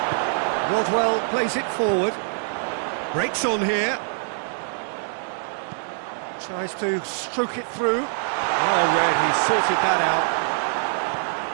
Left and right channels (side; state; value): left; silent; 58 dB below the other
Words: Rodwell plays it forward. Breaks on here. Tries to stroke it through. Oh, Red, he sorted that out.